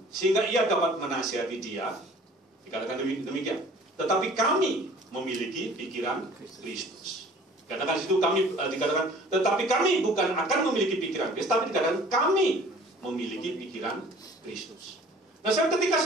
sehingga ia dapat menasihati dia? Dikatakan demikian. Tetapi kami memiliki pikiran Kristus. Katakan situ kami dikatakan, tetapi kami bukan akan memiliki pikiran Kristus, tapi dikatakan kami memiliki pikiran Kristus. Nah, ketika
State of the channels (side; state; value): both; normal; correlation 0.50